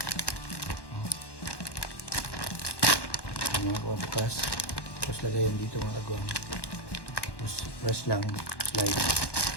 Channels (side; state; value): right; late; 1.1 ms